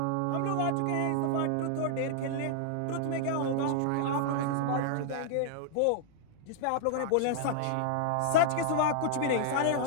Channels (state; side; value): different; both; correlation -0.01